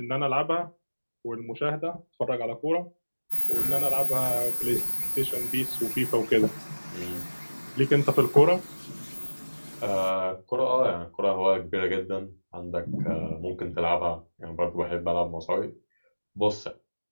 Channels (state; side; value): inverted; both; correlation -1.00